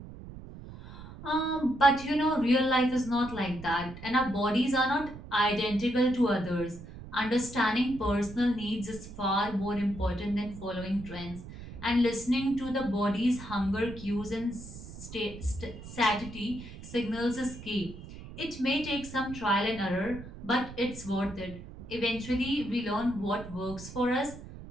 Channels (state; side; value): noise; right; rumble, 14 dB below the sound